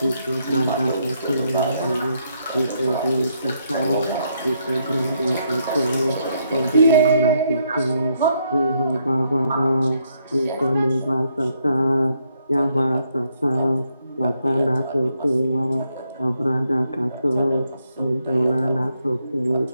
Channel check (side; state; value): both; inverted; correlation -0.75